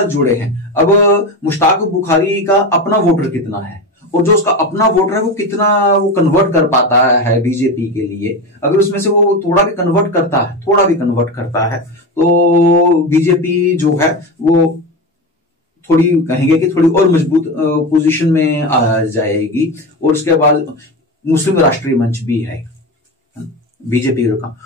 जुड़े हैं। अब मुश्ताक बुखारी का अपना वोटर कितना है, और जो उसका अपना वोटर है वो कितना वो कन्वर्ट कर पाता है बीजेपी के लिए, अगर उसमें से वो थोड़ा भी कन्वर्ट करता है तो बीजेपी जो है वो थोड़ी कहेंगे कि थोड़ी और मजबूत पोजीशन में आ जाएगी। और उसके बाद मुस्लिम राष्ट्रीय मंच भी है बीजेपी का,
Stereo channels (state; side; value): normal; both; correlation 0.21